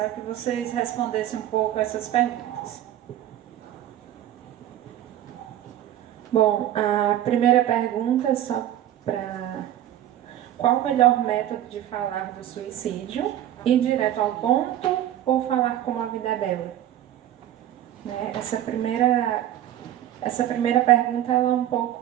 que vocês respondessem um pouco essas perguntas. Bom, a primeira pergunta é só para qual o melhor método de falar do suicídio? Ir direto ao ponto ou falar como a vida é bela? Né? Essa primeira pergunta ela é um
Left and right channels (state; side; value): quieter; left; 12.2 dB